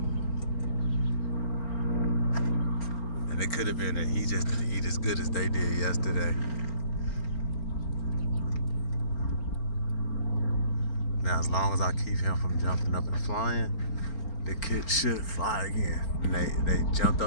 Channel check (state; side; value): late; right; 4.4 ms